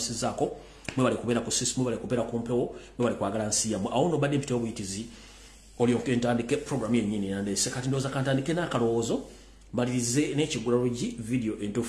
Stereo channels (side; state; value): both; identical; correlation 1.00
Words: mwe bali kubera ku system bali kubera ku mpewo mwe bali kwagala nsiya awono bade mpite obuyitizi oli okentandike program yenyini nande sekati ndoza kantandike na kalowoozo balirize n'ekigulalogi video